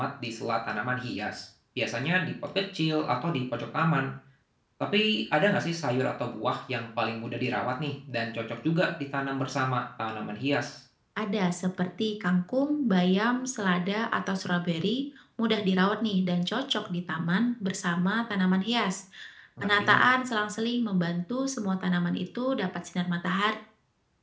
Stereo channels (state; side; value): identical; both; correlation 1.00